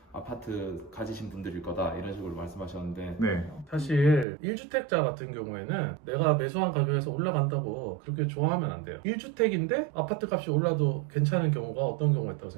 아파트 가지신 분들일 거다, 이런 식으로 말씀하셨는데, 네. 사실 1주택자 같은 경우에는 내가 매수한 가격에서 올라간다고 그렇게 좋아하면 안 돼요. 1주택인데 아파트 값이 올라도 괜찮은 경우가 어떤 경우가 있다고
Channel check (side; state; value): left; drops out; at 4.2 s